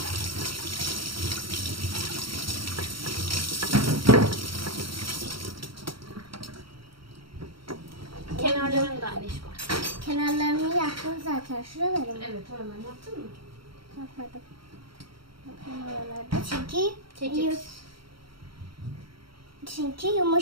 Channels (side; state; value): left; late; 0.74 ms